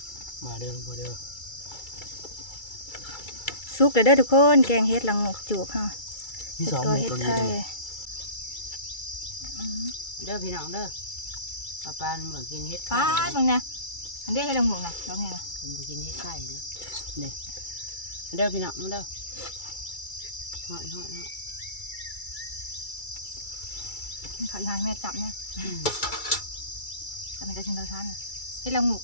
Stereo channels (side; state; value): right; late; 2.3 ms